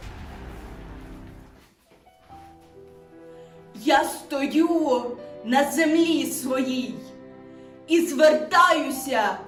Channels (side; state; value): both; identical; correlation 1.00